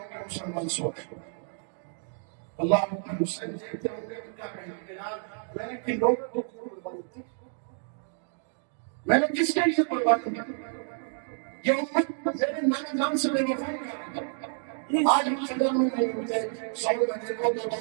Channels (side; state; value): left; silent; digital silence